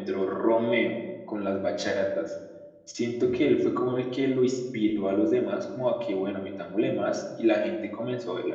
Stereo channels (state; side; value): identical; both; correlation 1.00